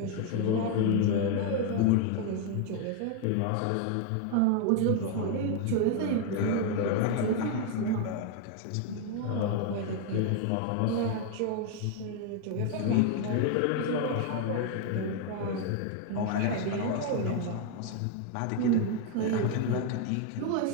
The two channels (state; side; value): different; both; correlation 0.00